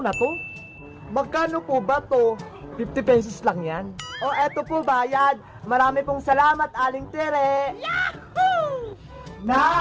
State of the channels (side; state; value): both; identical; correlation 1.00